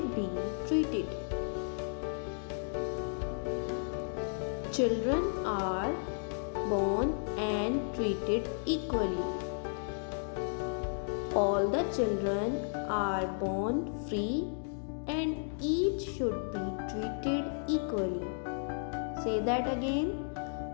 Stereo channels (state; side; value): silent; right; digital silence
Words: be treated? Children are born and treated equally. All the children are born free and each should be treated equally. Say that again.